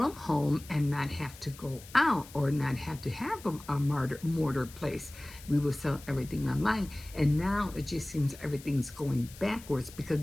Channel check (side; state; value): left; noise; hiss, 19 dB below the sound